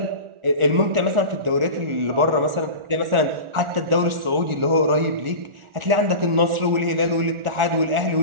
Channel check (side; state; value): left; late; 1.4 ms